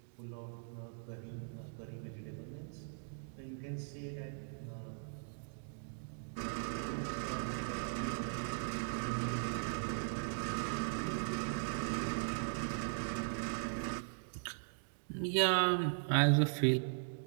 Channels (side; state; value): left; silent; digital silence